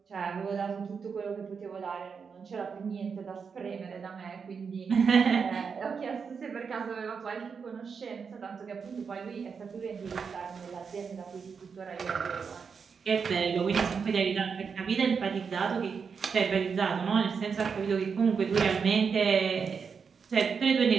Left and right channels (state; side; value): quieter; left; 5.9 dB